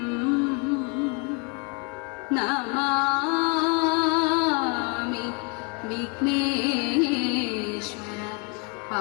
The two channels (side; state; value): right; quieter; 32.4 dB